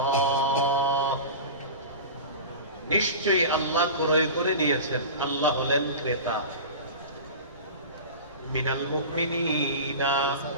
নিশ্চয়ই আল্লাহ ক্রয় করে নিয়েছেন। আল্লাহ হলেন ক্রেতা। মিনাল মুমিনিনা,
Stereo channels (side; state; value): both; inverted; correlation -0.31